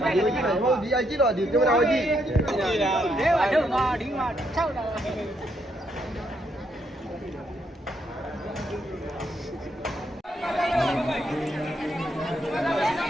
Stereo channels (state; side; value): normal; both; correlation 0.76